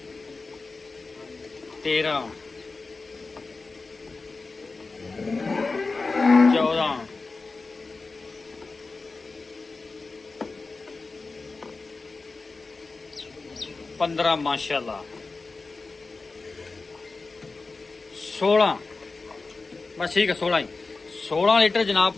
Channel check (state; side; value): quieter; right; 3.9 dB